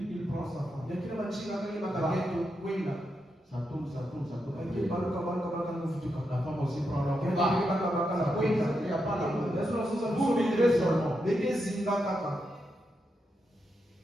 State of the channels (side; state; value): both; normal; correlation 0.85